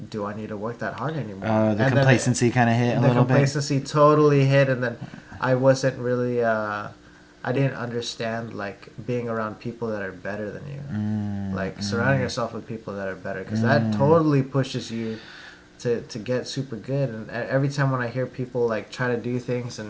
do I need to work that hard anymore? The And then complacency kind of hit a the little bit. complacency totally hit, and then I wasn't really I didn't understand like being around people that are better than you, like surrounding yourself with people that are better, because that totally pushes you to get super good. And every time when I hear people like try to do things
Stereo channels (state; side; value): identical; both; correlation 1.00